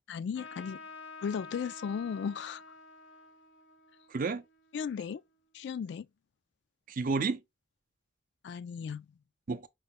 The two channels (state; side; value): normal; both; correlation 0.38